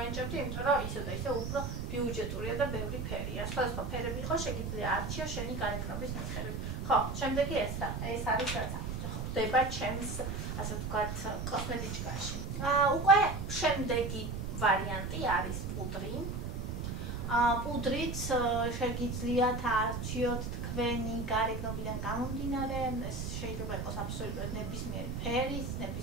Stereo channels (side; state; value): right; noise; rumble, 4 dB below the sound